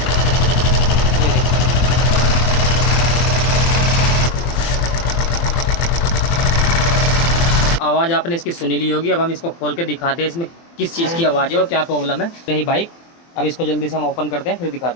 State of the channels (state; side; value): late; right; 24 ms